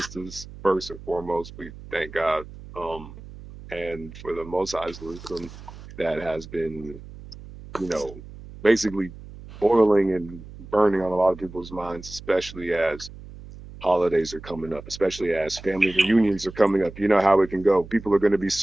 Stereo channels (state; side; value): noise; right; hum, 16 dB below the sound